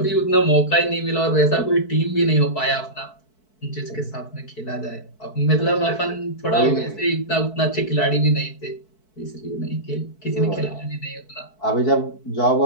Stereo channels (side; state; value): right; late; 4.6 ms